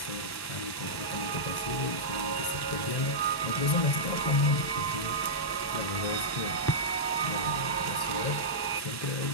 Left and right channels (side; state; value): right; late; 1.1 ms